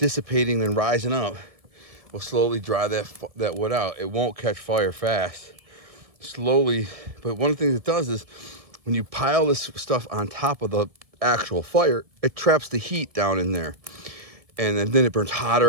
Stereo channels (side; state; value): left; late; 2.0 ms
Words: and rising up will slowly dry that wood out. It won't catch fire fast. Slowly, but one of the things it does is when you pile this stuff on top of the actual fire, it traps the heat down in there. And then it burns